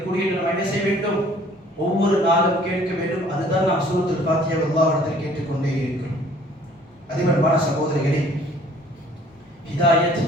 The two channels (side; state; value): both; normal; correlation 0.56